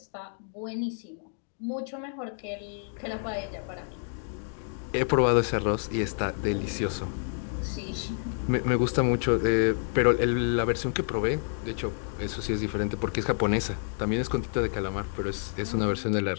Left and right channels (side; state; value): right; silent; digital silence